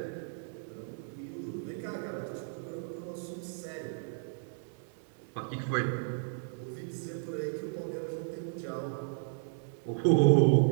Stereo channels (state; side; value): silent; left; digital silence